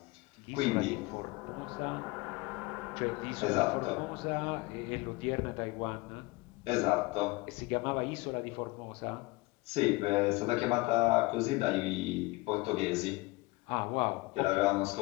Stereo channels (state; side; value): quieter; right; 22.8 dB